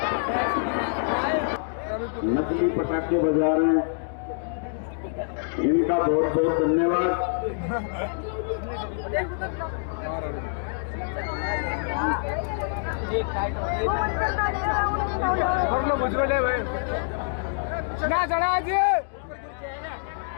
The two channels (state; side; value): silent; right; digital silence